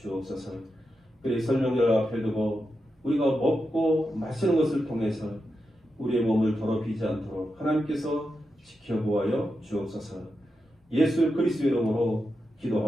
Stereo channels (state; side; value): normal; both; correlation 0.88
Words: 그의 설명절 앞에 두고 우리가 먹고 마시는 것을 통해서 우리의 몸을 더럽히지 않도록 하나님께서 지켜보아여 주옵소서. 예수 그리스도의 이름으로